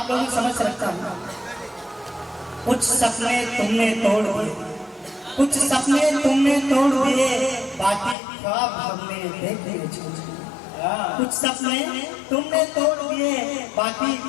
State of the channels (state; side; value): drops out; right; at 8.2 s